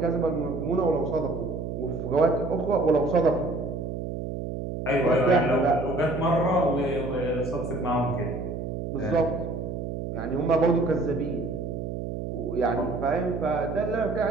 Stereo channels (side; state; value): right; noise; hum, 5 dB below the sound